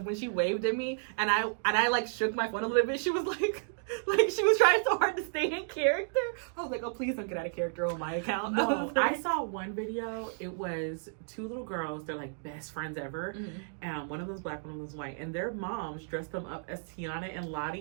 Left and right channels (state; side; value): silent; left; digital silence